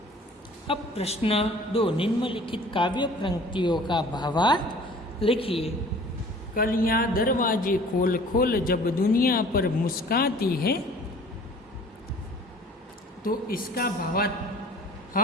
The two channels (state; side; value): normal; both; correlation 0.49